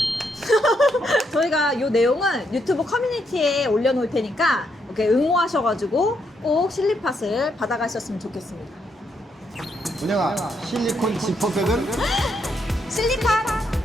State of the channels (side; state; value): both; normal; correlation 0.77